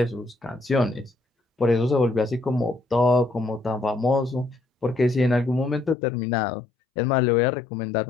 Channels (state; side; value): drops out; right; at 6.0 s